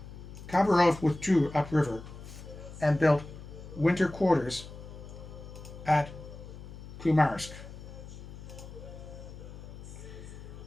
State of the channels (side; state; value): left; noise; hum, 14 dB below the sound